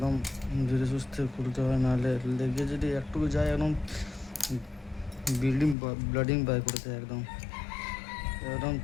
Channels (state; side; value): drops out; right; at 5.8 s